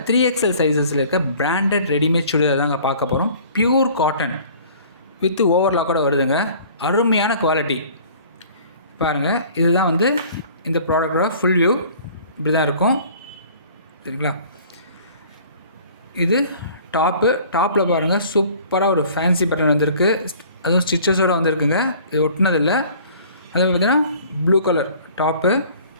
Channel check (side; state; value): both; inverted; correlation -0.50